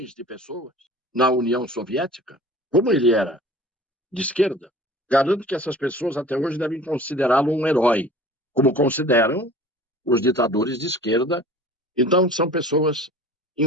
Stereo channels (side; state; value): both; normal; correlation 0.44